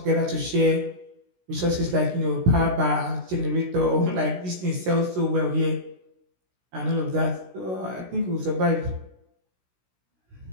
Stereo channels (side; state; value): left; late; 16 ms